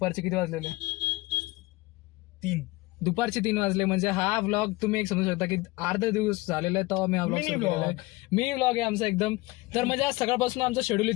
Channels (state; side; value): quieter; right; 21.5 dB